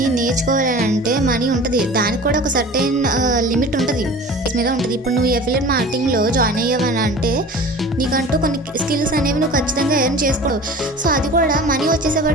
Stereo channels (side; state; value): both; normal; correlation 0.40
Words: నేర్చుకోవాలంటే మనీ ఉంటుంది, దానికి కూడా ఒక సర్టెన్ లిమిట్ ఉంటుంది మీద ఉంటుంది. ఇప్పుడు నువ్వు అఫిలియేట్ మార్కెటింగ్లో జాయిన్ అయ్యావని అంటే నీకంటూ కొన్ని స్కిల్స్ అనేవి నువ్వు ఖచ్చితంగా ఎర్న్ చేసుకోవు. సో అది కూడా మనీ